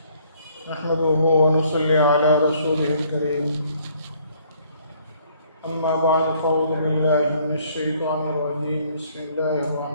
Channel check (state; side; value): inverted; both; correlation -0.62